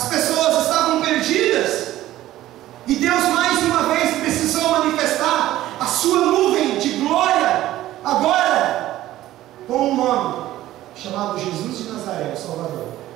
pessoas estavam perdidas, e Deus mais uma vez precisou manifestar a sua nuvem de glória, agora com um nome, chamado Jesus de Nazaré, o Salvador.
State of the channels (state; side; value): quieter; left; 14.6 dB